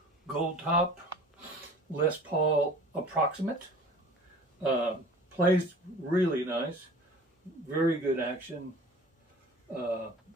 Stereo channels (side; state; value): both; normal; correlation 0.44